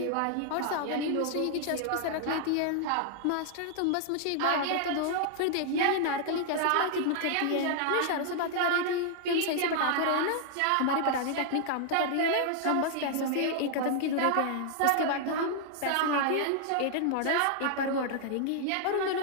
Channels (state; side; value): different; both; correlation 0.00